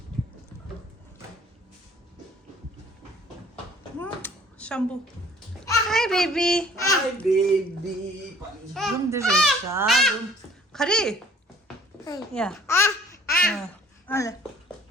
Shampoo. Hi, baby. Hi, baby. Room 들으셨어? room. 가리. 야. 알래.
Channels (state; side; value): normal; both; correlation 0.54